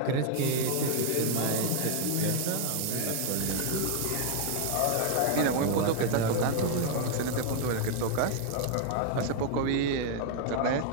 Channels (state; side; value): different; both; correlation 0.00